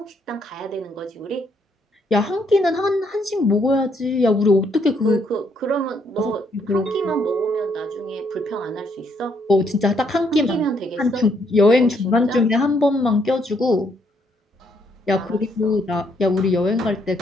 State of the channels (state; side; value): normal; both; correlation 0.72